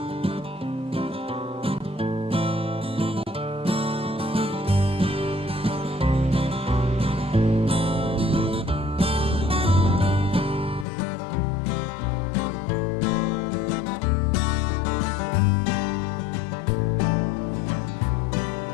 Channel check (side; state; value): right; drops out; at 10.9 s